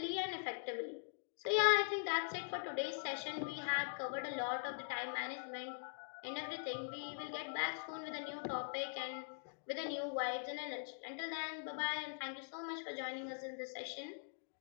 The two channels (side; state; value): right; silent; digital silence